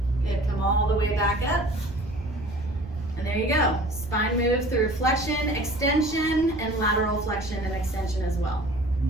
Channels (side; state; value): right; noise; rumble, 14 dB below the sound